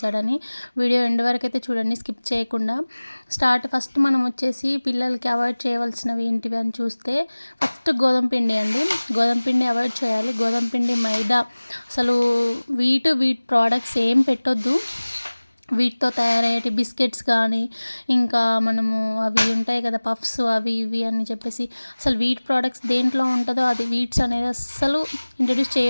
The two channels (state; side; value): inverted; both; correlation -1.00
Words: వీడియో ఎండ్ వరకు అయితే చూడండి, స్కిప్ చేయకుండా. ఫస్ట్ మనం వచ్చేసి పిల్లలకి అవాయిడ్ చేయవలసినవి ఏంటివి అని చూస్తే ఫస్ట్ గోధుమ పిండి అండి. గోధుమ పిండి అవాయిడ్ చేయాలి. గోధుమ పిండి, మైదా, అసలు వీట్ ప్రోడక్ట్స్ ఏం పెట్టొద్దు. వీటితో తయారయ్యే బిస్కెట్స్ కానీ, ఇంకా మనము అవి ఉంటాయి కదా పఫ్స్, అవి ఇవి అని చెప్పేసి అసలు వీట్ ప్రోడక్ట్స్ దేంట్లో ఉంటుందో అది వీట్స్ అనేది అస్సలు ఇంట్రడ్యూస్